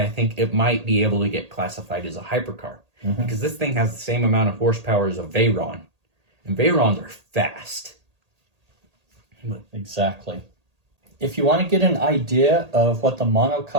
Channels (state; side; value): late; left; 1.8 ms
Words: I think it might be able to get classified as a hypercar. Because this thing has the same amount of horsepower as a Veyron. And Veyrons are fast. Exactly. If you want to get an idea of what the